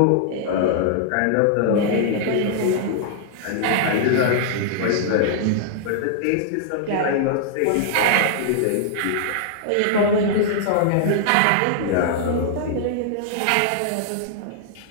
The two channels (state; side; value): different; both; correlation -0.01